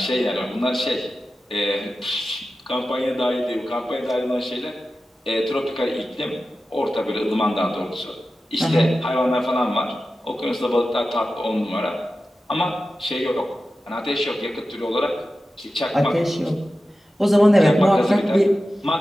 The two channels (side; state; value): both; normal; correlation 0.93